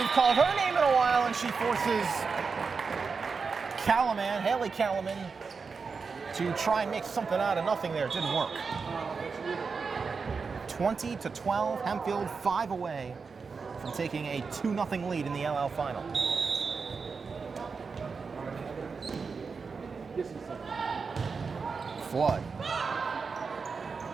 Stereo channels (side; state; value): left; quieter; 5.0 dB